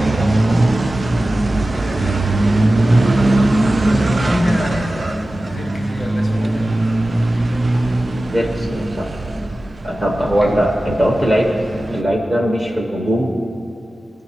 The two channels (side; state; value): both; normal; correlation 0.95